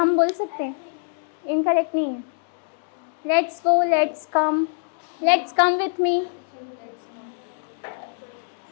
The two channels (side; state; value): right; silent; digital silence